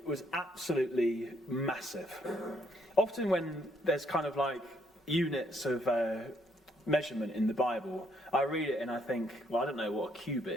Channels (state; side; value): normal; both; correlation 0.71